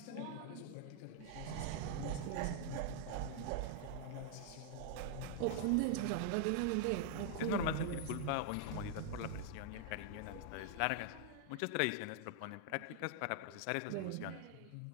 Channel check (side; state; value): both; different; correlation 0.00